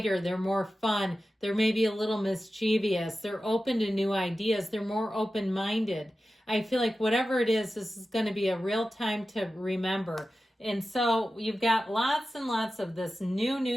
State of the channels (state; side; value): normal; both; correlation 0.94